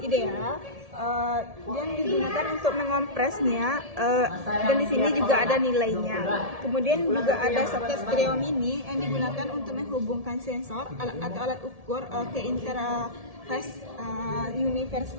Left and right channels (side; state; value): left; late; 1.7 ms